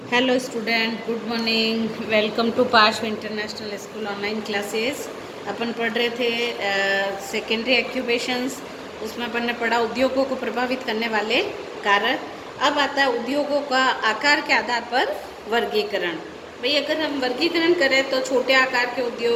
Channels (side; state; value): both; identical; correlation 1.00